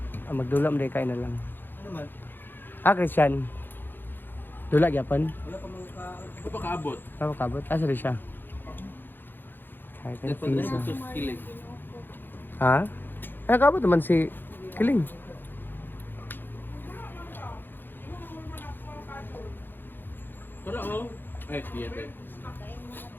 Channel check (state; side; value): late; right; 0.096 ms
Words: Magdula mo kain na lang. Ano man? Christian. Dula gyapon. Ano pa kaabot? Tama kabot. Asa rin siya? Kahit na pizza. Kilig. Ha? Ay, kabot naman si Kiling. Wala oh. Ay, theater.